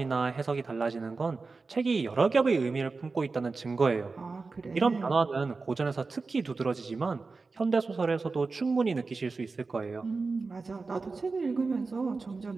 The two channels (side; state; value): left; quieter; 4.1 dB